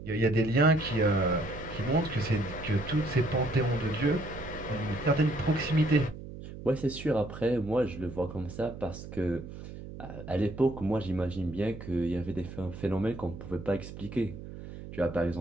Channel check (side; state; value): right; noise; hum, 12 dB below the sound